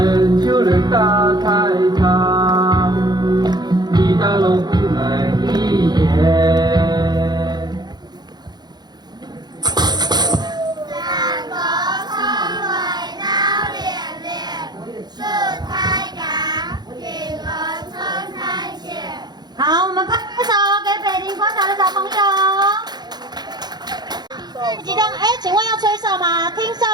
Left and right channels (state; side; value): late; left; 0.20 ms